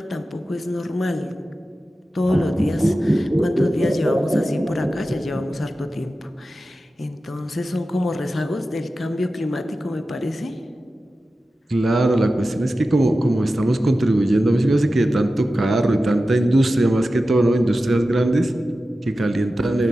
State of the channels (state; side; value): normal; both; correlation 0.93